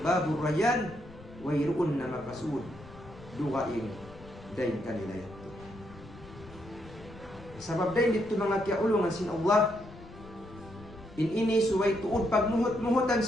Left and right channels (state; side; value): noise; left; rumble, 18 dB below the sound